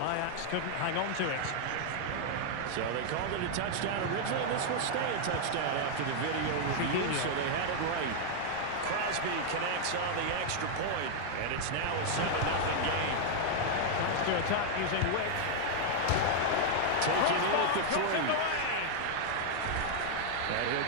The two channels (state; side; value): different; both; correlation 0.00